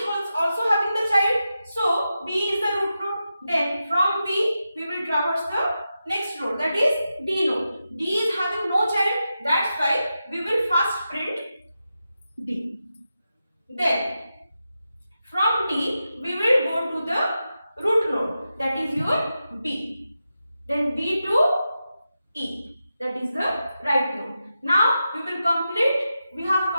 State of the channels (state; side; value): inverted; both; correlation -0.90